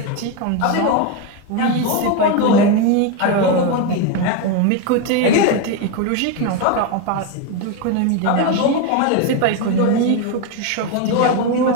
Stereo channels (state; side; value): different; both; correlation 0.02